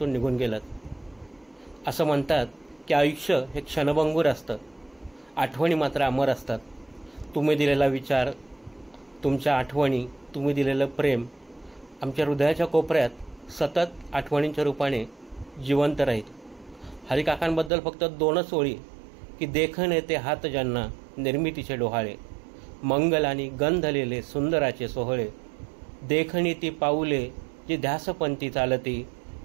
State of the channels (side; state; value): left; drops out; at 17.7 s